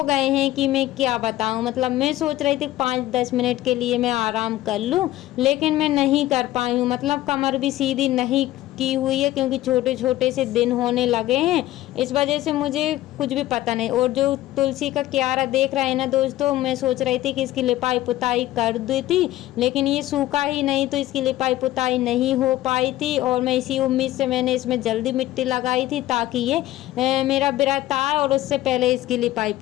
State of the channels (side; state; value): right; quieter; 15.3 dB